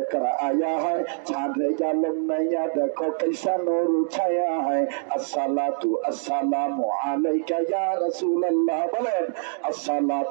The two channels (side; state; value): left; silent; digital silence